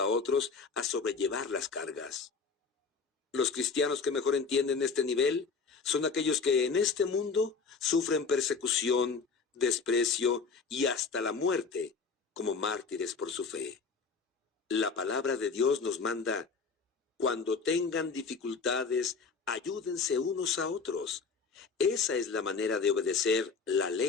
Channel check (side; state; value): right; quieter; 4.9 dB